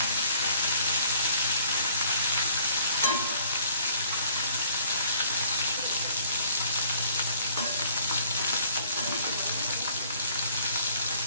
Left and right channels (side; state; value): both; inverted; correlation -0.58